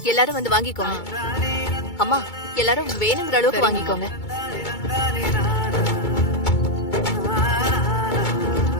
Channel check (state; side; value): late; right; 2.2 ms